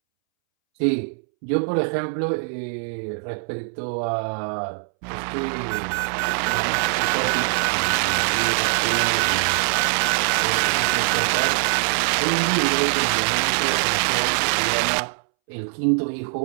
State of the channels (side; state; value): left; silent; 64 dB below the other